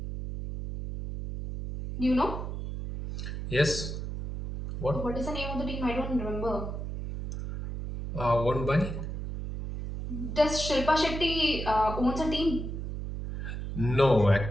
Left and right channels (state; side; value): noise; right; hum, 5 dB below the sound